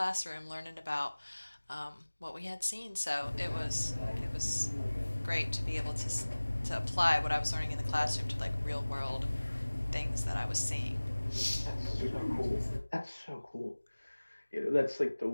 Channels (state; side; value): inverted; both; correlation -1.00